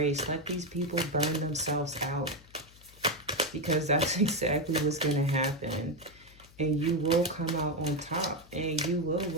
Let these people burn themselves out, because that's exactly what's going to happen. And you will come out on top. And you will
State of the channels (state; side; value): noise; left; hum, 24 dB below the sound